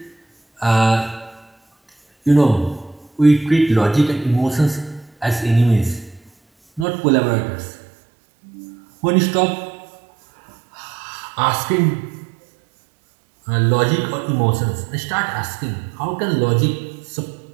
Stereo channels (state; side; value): drops out; left; at 6.9 s